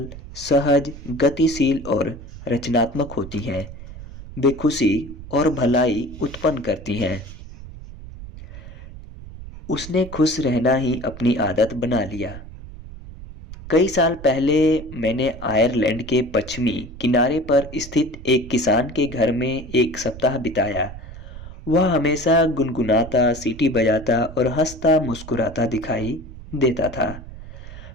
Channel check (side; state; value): right; noise; rumble, 14 dB below the sound